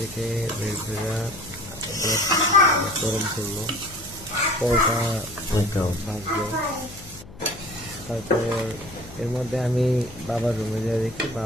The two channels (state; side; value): noise; left; hum, 18 dB below the sound